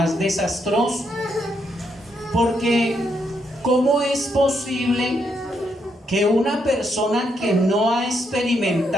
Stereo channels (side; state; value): both; normal; correlation 0.78